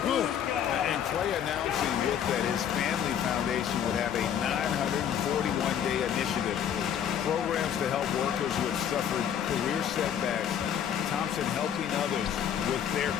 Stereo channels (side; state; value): right; quieter; 9.1 dB